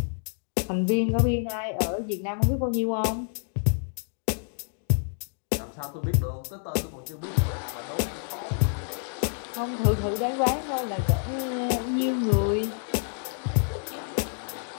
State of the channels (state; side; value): silent; right; 59 dB below the other